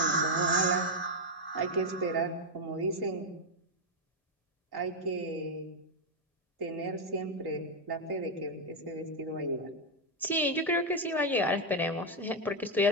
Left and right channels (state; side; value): normal; both; correlation 0.02